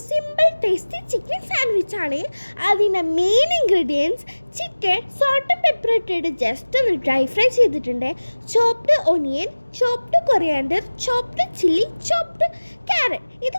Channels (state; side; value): inverted; both; correlation -1.00